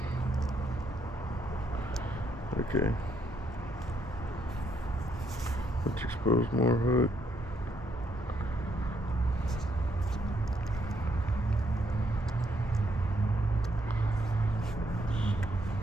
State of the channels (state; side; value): normal; both; correlation 0.74